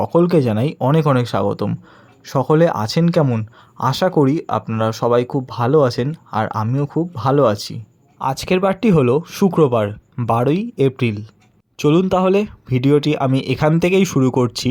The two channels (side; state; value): both; identical; correlation 1.00